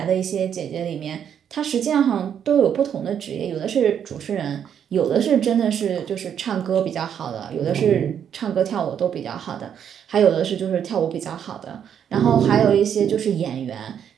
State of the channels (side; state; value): left; quieter; 8.6 dB